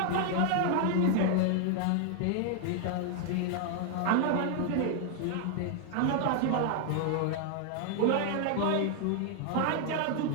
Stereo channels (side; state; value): both; different; correlation 0.00